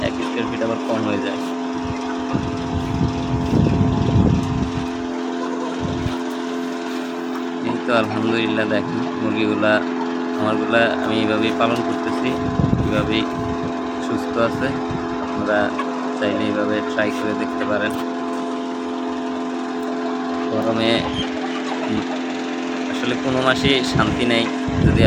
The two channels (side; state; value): both; identical; correlation 1.00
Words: 1 স্কোয়ার ফিট আবার কম হয়ে যায়। আলহামদুলিল্লাহ দেখেন মুরগিগুলা আমারগুলা আমি এইভাবেই পালন করতেছি, এইভাবেই সুস্থ আছে। আপনারা চাইলে এইভাবে ট্রাই করে দেখতে পারেন। গরমে উম আসলে কোনো মাসেই শান্তি নেই যদি